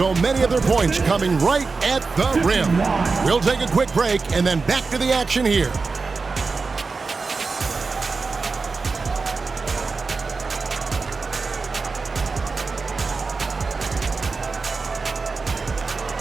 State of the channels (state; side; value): quieter; left; 4.3 dB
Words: many of their points coming right at the rim. We'll take a quick break and then back to the action here.